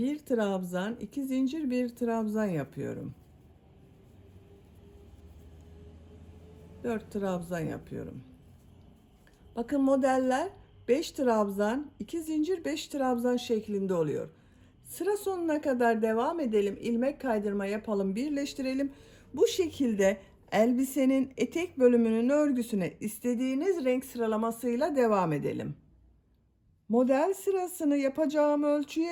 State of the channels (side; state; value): both; identical; correlation 1.00